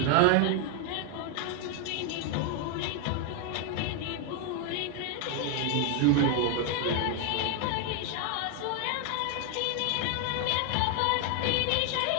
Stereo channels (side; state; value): both; different; correlation 0.01